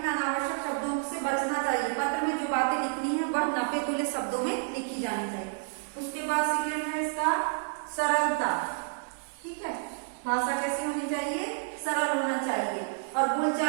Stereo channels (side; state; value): left; silent; digital silence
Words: अनावश्यक शब्दों से बचना चाहिए। पत्र में जो बातें लिखनी है वह नपे तुले शब्दों में लिखी जानी चाहिए। उसके बाद सेकेंड है इसका सरलता, ठीक है। भाषा कैसी होनी चाहिए, सरल होना चाहिए और